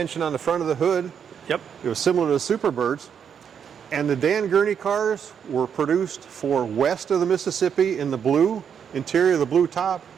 on the front of the hood. Yep. It was similar to the Superbirds. And the Dan Gurney cars were produced for west of the Mississippi in the blue interior, the blue top.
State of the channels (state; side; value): quieter; left; 7.7 dB